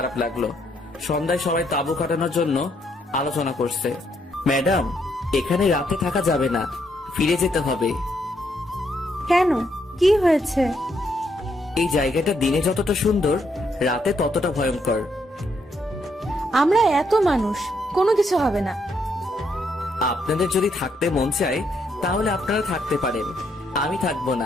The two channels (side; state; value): both; normal; correlation 0.75